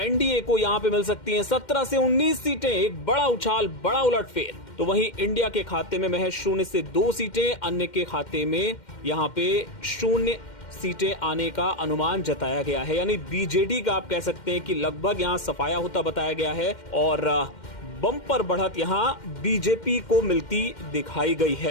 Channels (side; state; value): right; late; 2.1 ms